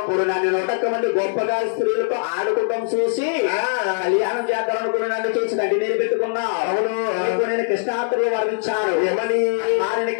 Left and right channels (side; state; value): right; silent; 65 dB below the other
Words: నన్ను 100 మంది గొప్పగా స్త్రీలతో ఆడుకోవడం చూసి కళ్యాణం చేద్దాం అనుకుని నన్ను చూసి గడ్డి నీరు పెట్టుకున్నావు. అవును. నేను కృష్ణాత్రులు వర్ణించాను. ఏమని